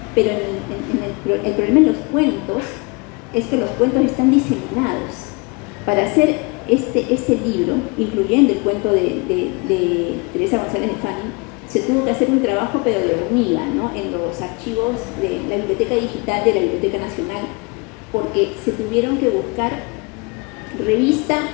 pero el problema en los cuentos es que los cuentos están diseminados. Para hacer este libro, incluyendo el cuento de Teresa González de Fani, se tuvo que hacer un trabajo pero de hormiga, ¿no? En los archivos de la Biblioteca Digital de la Biblioteca Nacional, porque se tuvieron que buscar revista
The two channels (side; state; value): right; quieter; 29.2 dB